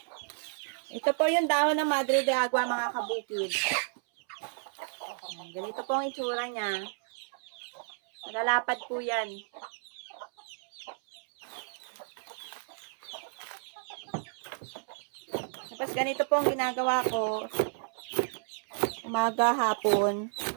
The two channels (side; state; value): left; silent; 57 dB below the other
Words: Ito po yung dahon ng Madre de Agua mga kabukid. Ganito po ang itsura niya. Malalapad po yan. Tapos ganito po ang ginagawa ko. Umaga, hapon.